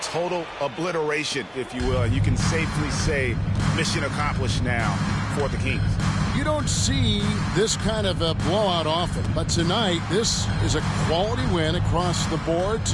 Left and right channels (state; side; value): identical; both; correlation 1.00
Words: total obliteration, if you will. And you can safely say mission accomplished now for the Kings. You don't see this kind of a blowout often, but tonight this is a quality win across the board